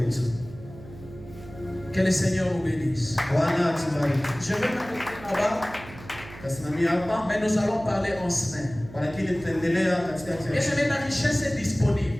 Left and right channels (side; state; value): right; noise; hum, 17 dB below the sound